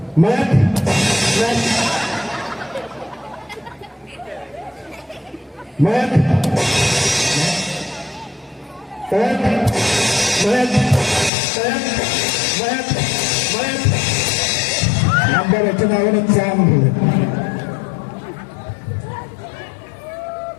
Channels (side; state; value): right; drops out; at 11.3 s